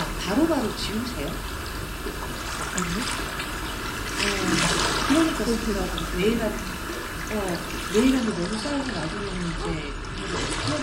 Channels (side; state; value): both; identical; correlation 1.00